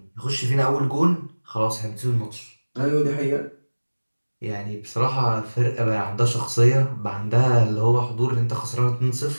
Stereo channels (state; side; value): inverted; both; correlation -1.00